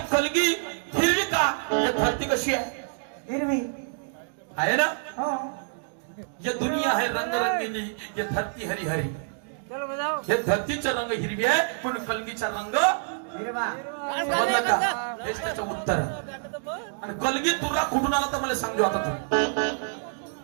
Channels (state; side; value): silent; left; digital silence